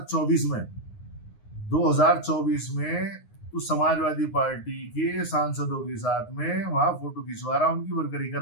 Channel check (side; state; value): right; late; 9.6 ms